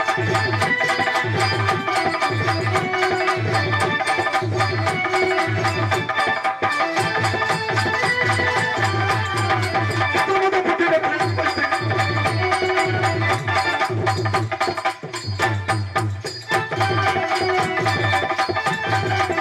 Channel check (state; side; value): identical; both; correlation 1.00